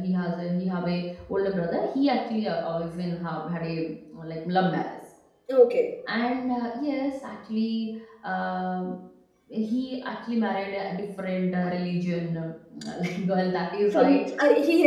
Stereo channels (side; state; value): both; identical; correlation 1.00